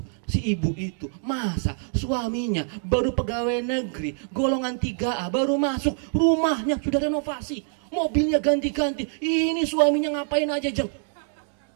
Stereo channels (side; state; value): left; silent; 61 dB below the other